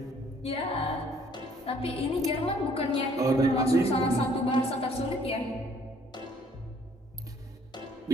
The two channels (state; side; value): normal; both; correlation 0.60